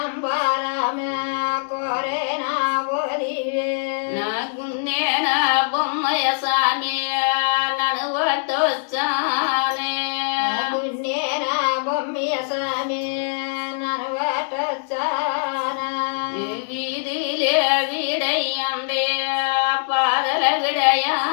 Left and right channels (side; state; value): right; silent; 64 dB below the other